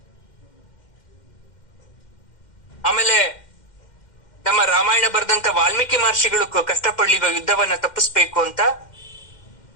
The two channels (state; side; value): late; right; 2.1 ms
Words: ಆಮೇಲೆ ನಮ್ಮ ರಾಮಾಯಣ ಬರೆದಂತ ವಾಲ್ಮೀಕಿ ಮಹರ್ಷಿಗಳು ಕಷ್ಟಪಡ್ಲಿಲ್ವಾ ಯುದ್ಧವನ್ನ ತಪ್ಪಿಸ್ಬೇಕು ಅಂತ?